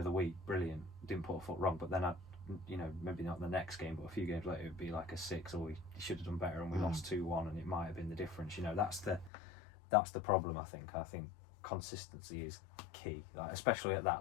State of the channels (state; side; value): drops out; right; at 9.3 s